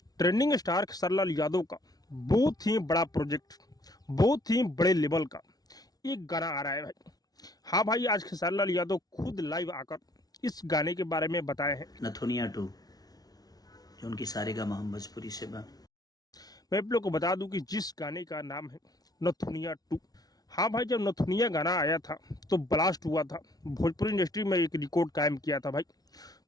ट्रेंडिंग स्टार खेसारीलाल यादव का बहुत ही बड़ा प्रोजेक्ट, बहुत ही बड़े लेवल का एक गाना आ रहा है भाई। हाँ भाई, आज खेसारीलाल यादव खुद लाइव आकर इस गाने के बारे में बताए हैं। नथुनिया 2 जो उनकी सारेगामा हम भोजपुरी से बा। मैं आप लोग को बता दूं कि जिस गाने का नाम है नथुनिया 2। हाँ भाई, जब नथुनिया गाना आया था तो ब्लास्ट हुआ था, भोजपुरी इंडस्ट्री में एक रिकॉर्ड कायम किया था भाई।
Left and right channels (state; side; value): late; right; 0.19 ms